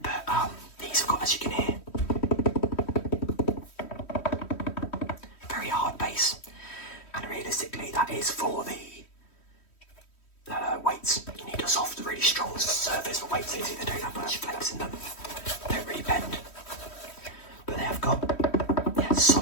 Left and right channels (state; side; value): late; right; 3.1 ms